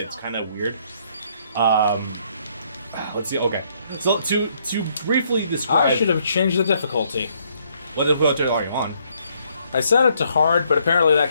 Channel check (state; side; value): inverted; both; correlation -0.69